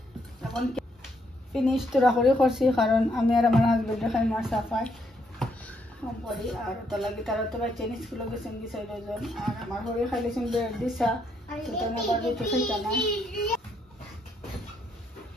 এখন ফিনিশ তোরা করে করছি, কারণ আমি আর আমার হাজবেন্ডে খাই মার সাফাই কম করি। আর ওটা লাগে তারা তো বাচ্চা স্কুলে গেছেন কি 6 জন। আর আমার ঘরে খাইলেছেন ব্রেড দিছা, সেটা আমি আবার রুটি খাইতাম না।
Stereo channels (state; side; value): normal; both; correlation 0.74